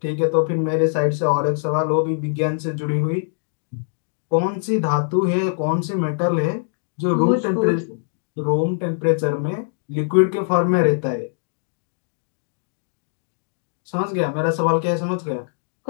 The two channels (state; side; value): silent; right; digital silence